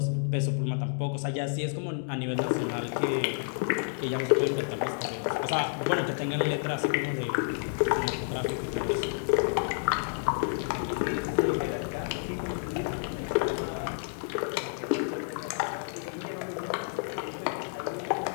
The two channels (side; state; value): right; silent; digital silence